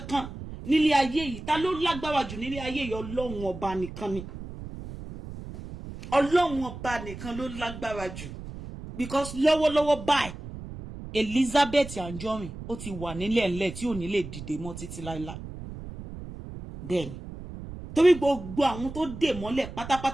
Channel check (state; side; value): noise; right; rumble, 11 dB below the sound